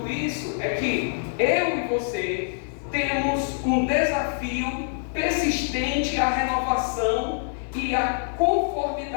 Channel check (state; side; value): silent; right; digital silence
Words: isso é que eu e você temos um desafio persistente à renovação e à